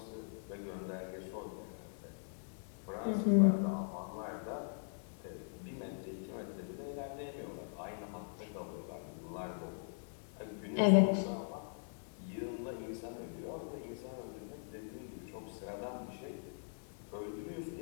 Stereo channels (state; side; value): silent; right; 51 dB below the other